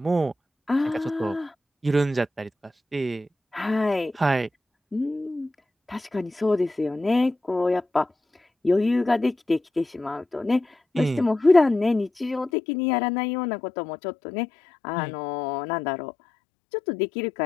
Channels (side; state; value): right; drops out; at 12.5 s